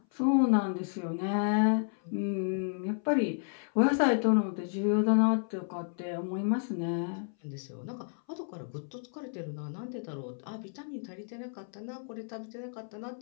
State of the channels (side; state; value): right; silent; 57 dB below the other